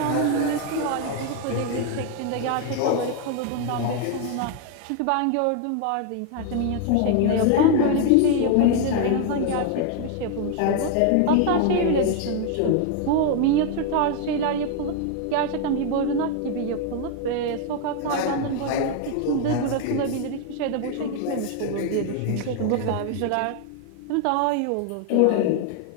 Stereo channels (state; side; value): different; both; correlation 0.00